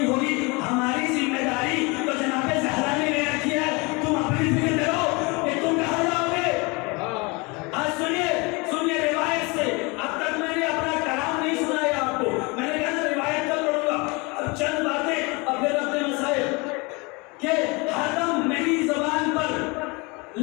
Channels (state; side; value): quieter; right; 27.5 dB